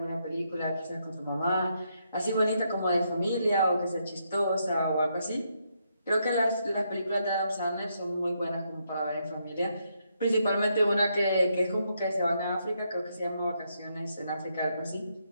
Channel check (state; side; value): inverted; both; correlation -0.77